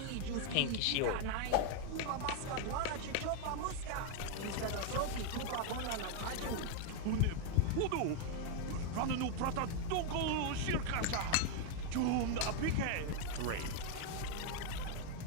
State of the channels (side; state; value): both; different; correlation 0.01